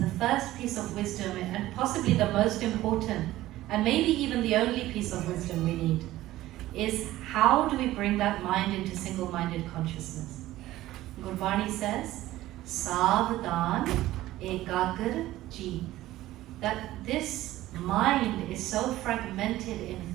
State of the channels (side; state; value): left; quieter; 15.7 dB